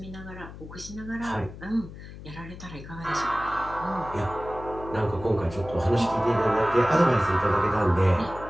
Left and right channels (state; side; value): noise; left; hum, 14 dB below the sound